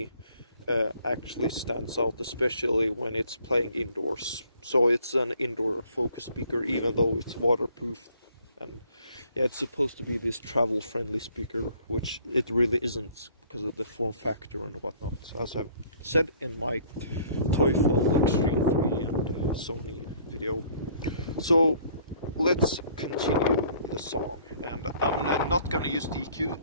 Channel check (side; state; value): both; inverted; correlation -0.58